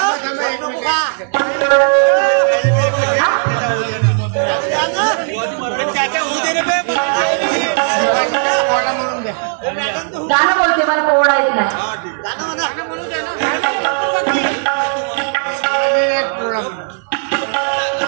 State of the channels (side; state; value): left; silent; 63 dB below the other